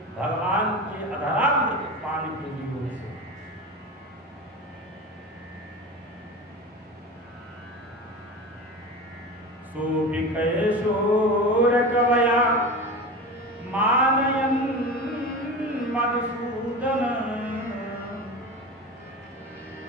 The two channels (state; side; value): normal; both; correlation 0.28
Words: भगवान के अधरामृत पान के योग से सोभिकैशोर कवया मानयन् मधुसूदन